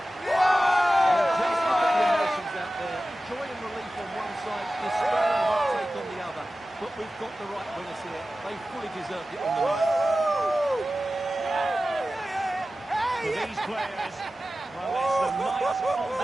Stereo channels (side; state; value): both; normal; correlation 0.95